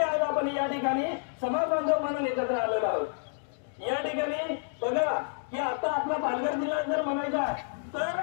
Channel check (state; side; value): silent; right; digital silence